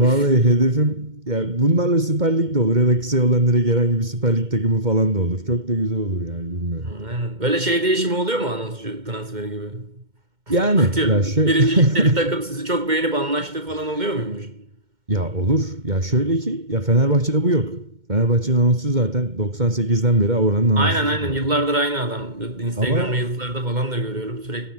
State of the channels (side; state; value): left; late; 2.1 ms